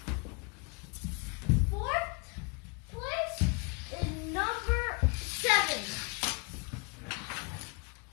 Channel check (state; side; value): quieter; right; 32.7 dB